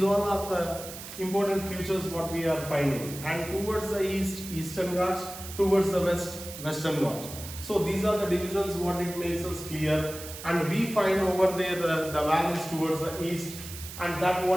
all are the important features what we are finding, and towards the east, Eastern Ghats, towards the west, Western Ghats. So these are the divisions what it makes us clear, and we find over there the valleys towards the east, and that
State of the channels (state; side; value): noise; right; hiss, 12 dB below the sound